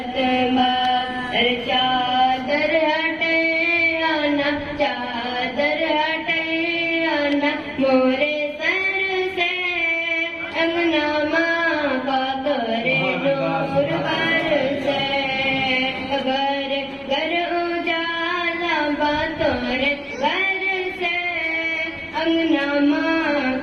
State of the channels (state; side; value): identical; both; correlation 1.00